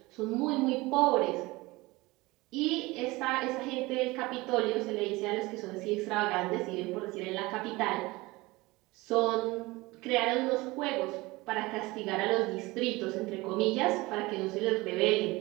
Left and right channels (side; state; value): left; quieter; 21.6 dB